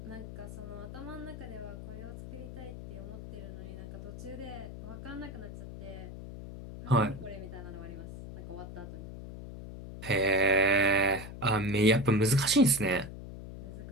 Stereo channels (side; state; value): left; noise; hum, 11 dB below the sound